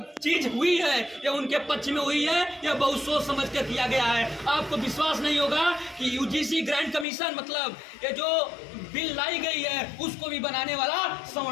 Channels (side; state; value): right; drops out; at 7.1 s